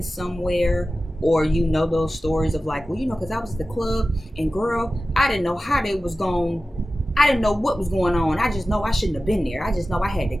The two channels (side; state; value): both; normal; correlation 0.95